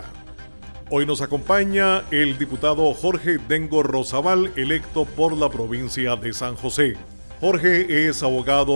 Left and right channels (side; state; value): both; inverted; correlation -1.00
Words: Hoy nos acompaña el diputado Jorge Dengo Rosabal, electo por la provincia de San José. Jorge es